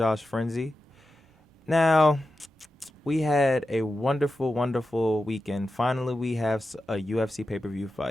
Frenzy. Now, we had a wonderful, wonderful weekend. Finally, we have a UFC pay-per-view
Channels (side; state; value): both; normal; correlation 0.91